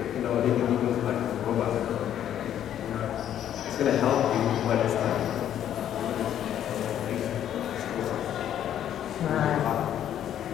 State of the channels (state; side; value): quieter; right; 10.6 dB